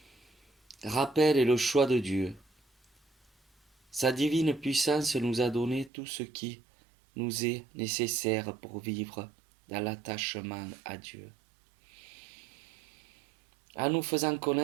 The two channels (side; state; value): left; drops out; at 5.9 s